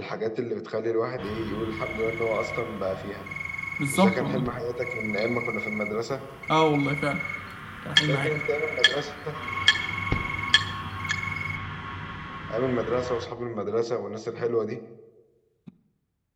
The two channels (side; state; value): both; identical; correlation 1.00